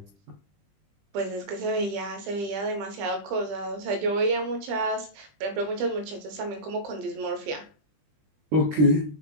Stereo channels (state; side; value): late; left; 20 ms